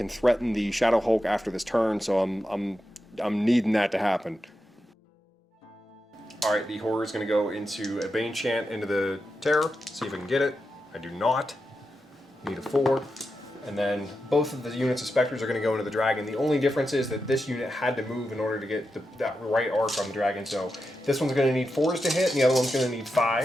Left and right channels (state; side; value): normal; both; correlation 0.88